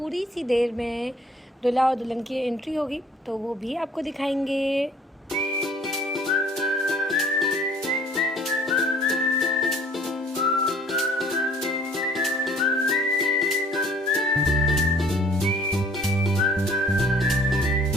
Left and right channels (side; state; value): both; normal; correlation 0.55